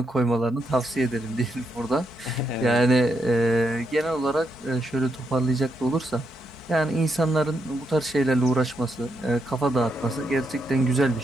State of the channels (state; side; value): normal; both; correlation 0.81